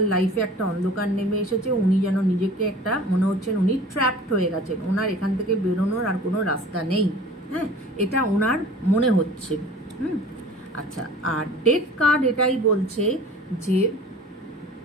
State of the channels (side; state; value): both; normal; correlation 0.43